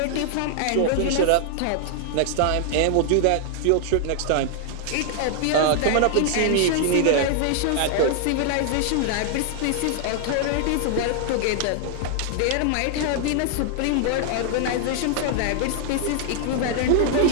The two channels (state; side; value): different; both; correlation 0.00